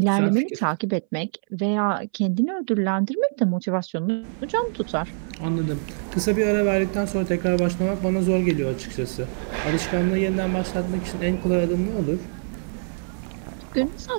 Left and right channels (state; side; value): silent; left; 62 dB below the other